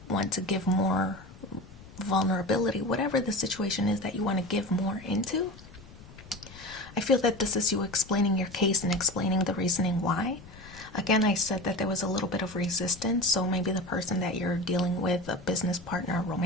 want to give more vulnerability, whatever the situation is that you want to give more into. I feel that this is you explaining your case and explaining the reasoning why. Again, I said that there was a little bit of resistance, so maybe the person that you're dealing with, a business partner, a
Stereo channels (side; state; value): left; noise; rumble, 19 dB below the sound